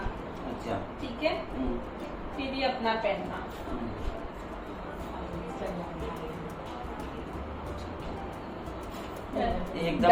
अच्छा। ठीक है, फिर ही अपना पहनना।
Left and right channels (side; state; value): both; identical; correlation 1.00